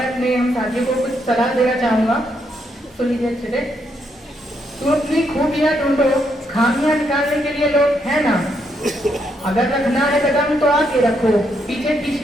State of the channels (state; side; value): normal; both; correlation 0.76